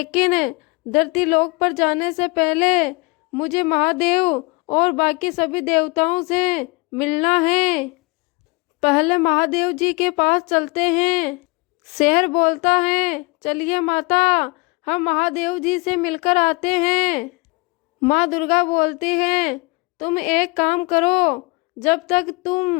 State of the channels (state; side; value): quieter; right; 27.3 dB